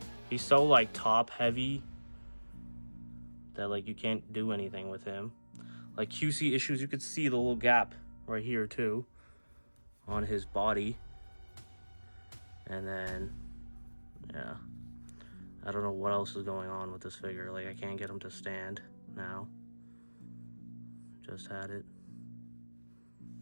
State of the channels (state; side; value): inverted; both; correlation -1.00